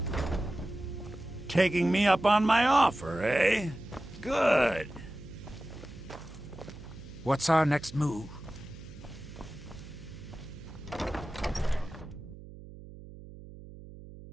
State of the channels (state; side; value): noise; right; hum, 16 dB below the sound